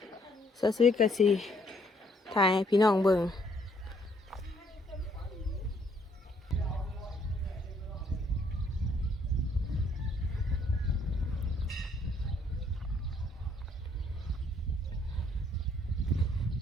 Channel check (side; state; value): both; normal; correlation 0.67